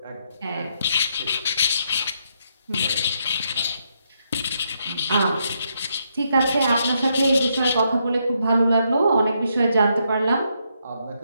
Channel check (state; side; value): inverted; both; correlation -0.77